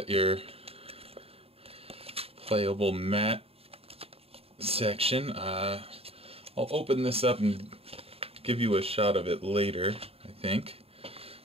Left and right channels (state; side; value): late; left; 0.28 ms